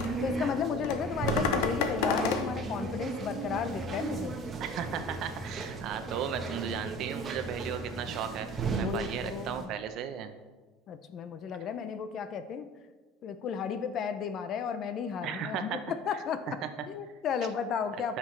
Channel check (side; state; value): both; normal; correlation 0.42